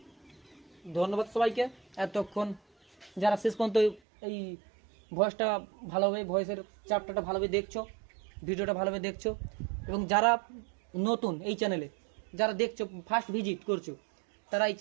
ধন্যবাদ সবাইকে এতক্ষণ যারা শেষ পর্যন্ত এই ভয়েসটা ভালোভাবে, ভয়েসের চ্যাপ্টারটা ভালোভাবে দেখছো, ভিডিওটা ভালোভাবে দেখছো। এবং যারা নতুন এই চ্যানেলে, যারা দেখছো ফার্স্ট ভিজিট করছো, তারা এই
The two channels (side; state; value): left; drops out; at 4.0 s